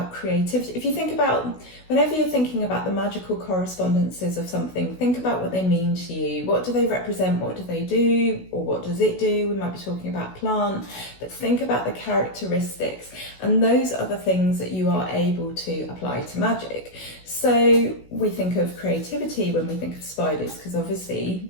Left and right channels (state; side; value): late; right; 16 ms